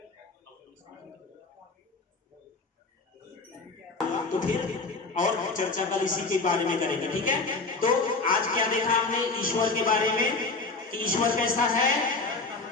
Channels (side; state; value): right; quieter; 3.8 dB